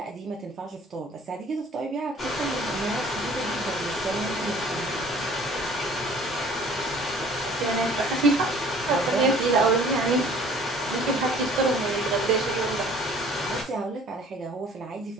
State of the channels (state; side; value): normal; both; correlation 0.51